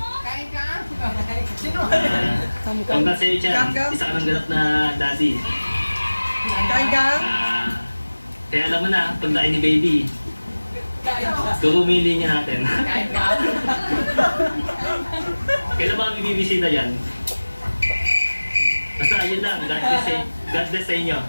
Congrats sa iyo, Chan. Isa ka ng ganap na daddy. Kaya alam mo na, pagdain ni baby, kumili niya natin. Kailan ba kami bibisita yan? Basta ayun lang, God bless sa inyo,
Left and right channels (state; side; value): inverted; both; correlation -1.00